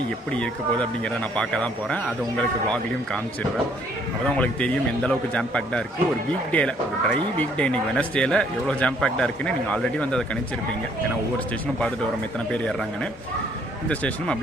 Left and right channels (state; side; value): normal; both; correlation 0.64